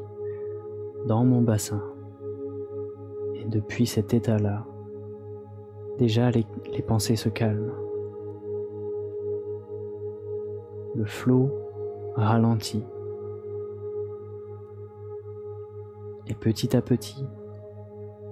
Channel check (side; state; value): both; identical; correlation 1.00